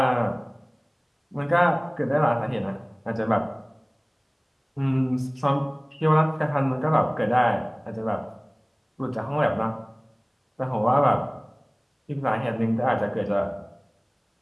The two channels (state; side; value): identical; both; correlation 1.00